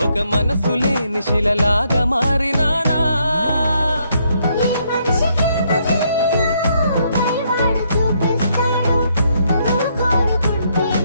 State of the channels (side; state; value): both; inverted; correlation -0.73